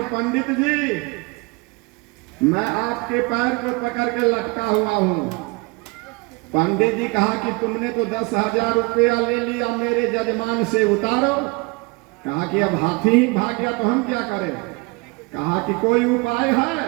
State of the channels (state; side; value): quieter; left; 27.0 dB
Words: पंडित जी, मैं आपके पैर को पकड़ के लटका हुआ हूं। पंडित जी कहा कि तुमने तो 10,000 रुपया ले लिया मेरे जजमान से, उतारो। कहा कि अब हाथी ही भाग गया तो हम क्या करें। कहा कि कोई उपाय है।